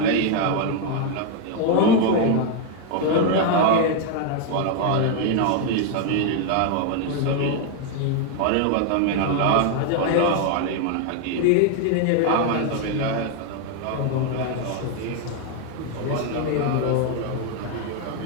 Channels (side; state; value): both; different; correlation 0.01